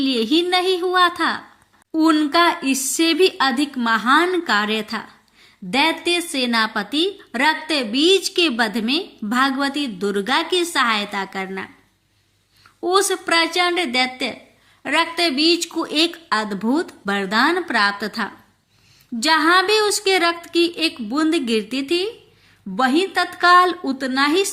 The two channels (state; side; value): identical; both; correlation 1.00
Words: ही नहीं हुआ था, उनका इससे भी अधिक महान कार्य था। दैत्य सेनापति रक्तबीज के वध में भगवती दुर्गा की सहायता करना। उस प्रचंड दैत्य रक्तबीज को एक अद्भुत वरदान प्राप्त था। जहां भी उसके रक्त की एक बूंद गिरती थी, वहीं तत्काल उतना ही